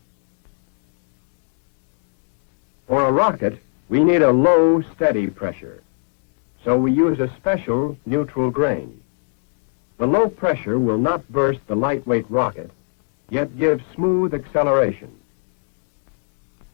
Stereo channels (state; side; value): silent; right; digital silence